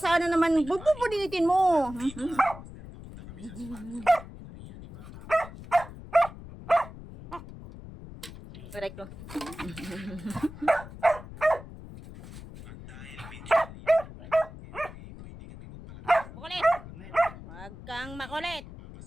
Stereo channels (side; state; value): left; noise; rumble, 15 dB below the sound